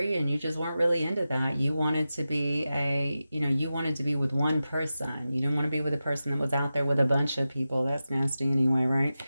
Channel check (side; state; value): both; inverted; correlation -0.93